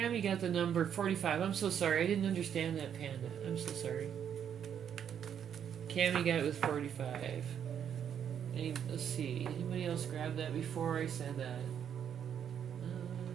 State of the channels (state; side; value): quieter; left; 8.7 dB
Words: got the number 45. I'm so sorry. I didn't understand that, Panda. I'm so sorry. Cammy got it with 45. Let's see. Anybody else grab that before I said that?